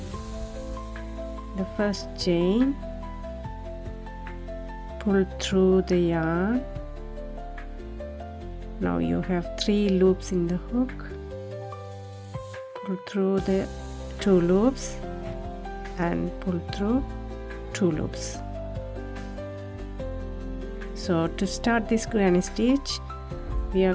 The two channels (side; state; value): both; identical; correlation 1.00